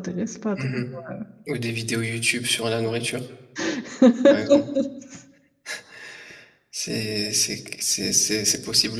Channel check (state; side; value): identical; both; correlation 1.00